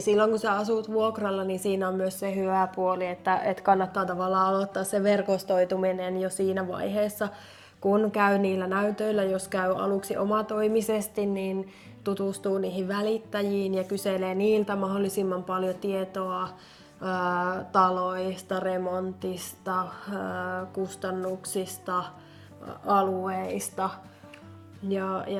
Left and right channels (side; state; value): both; identical; correlation 1.00